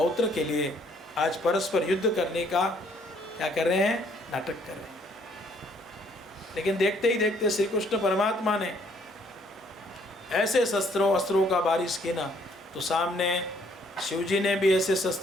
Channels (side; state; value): both; normal; correlation 0.65